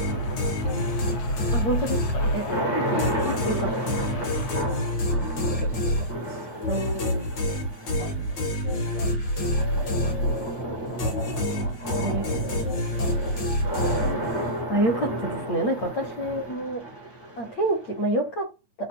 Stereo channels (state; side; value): late; right; 9.0 ms